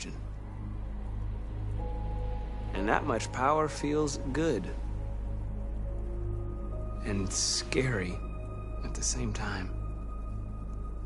And that much power feels good. And scary at the same time.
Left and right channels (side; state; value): both; identical; correlation 1.00